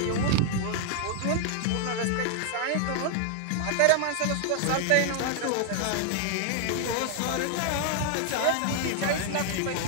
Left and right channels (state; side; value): different; both; correlation 0.00